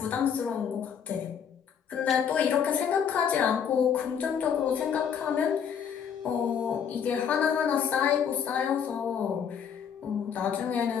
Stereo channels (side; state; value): right; quieter; 7.7 dB